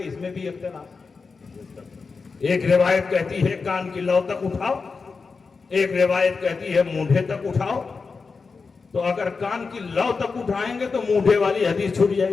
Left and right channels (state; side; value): quieter; right; 4.7 dB